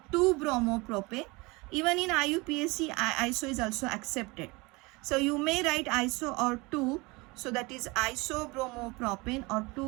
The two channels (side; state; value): left; quieter; 24.9 dB